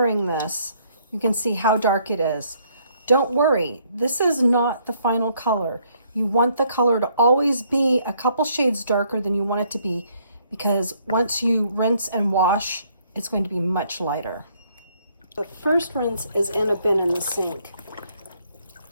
this, you can see how dark it is. Don't worry, this is not the final color. You want the color to always be a couple shades darker than you want it to be, because once you rinse and wash, it's going to be much lighter. The first rinse is in a bin in the sink.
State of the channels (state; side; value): inverted; both; correlation -0.67